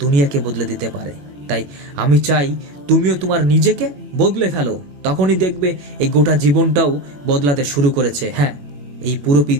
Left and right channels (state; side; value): late; left; 21 ms